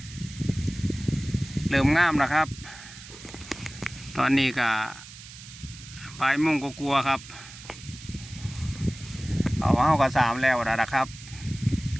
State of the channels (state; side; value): noise; right; hiss, 16 dB below the sound